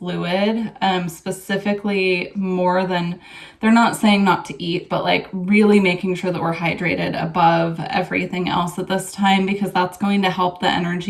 specifically more than, they're not saying not to eat, but really making sure that we're hydrated above everything else at this time, because that's going to help the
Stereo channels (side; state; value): both; identical; correlation 1.00